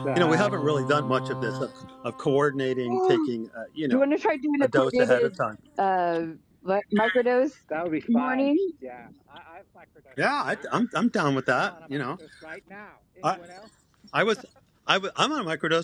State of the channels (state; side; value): identical; both; correlation 1.00